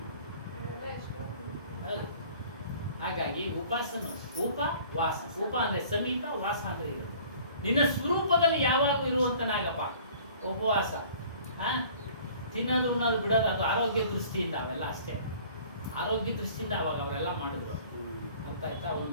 ಅದೆಲ್ಲ ಎಷ್ಟು ಹಾಗಾಗಿ ಉಪಾಸನ, ಉಪವಾಸ. ಉಪ ಅಂದ್ರೆ ಸಮೀಪ, ವಾಸ ಅಂದ್ರೆ ಇರೋದು. ನಿನ್ನ ಸ್ವರೂಪದಲ್ಲಿ ಯಾವಾಗೂ ಇರುವಂತನಾಗಪ್ಪ ಉಪವಾಸ. ತಿನ್ನೋದು ಉಣ್ಣೋದು ಬಿಡೋದು ಅದು ಆರೋಗ್ಯ ದೃಷ್ಟಿಯಿಂದ, ಅವೆಲ್ಲ ಅಷ್ಟೇ ಆರೋಗ್ಯ ದೃಷ್ಟಿಯಿಂದ ಅವಾಗ ಅವರೆಲ್ಲ ಮಾಡಿದ್ರು. ಅರ್ಥ ಆಯ್ತಾ? ಒಂದು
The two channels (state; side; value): inverted; both; correlation -0.50